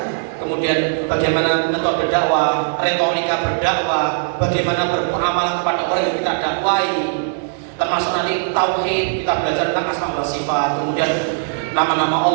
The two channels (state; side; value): silent; left; 67 dB below the other